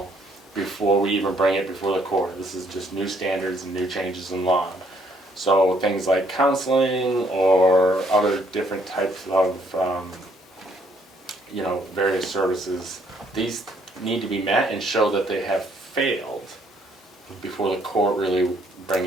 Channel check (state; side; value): normal; both; correlation 0.67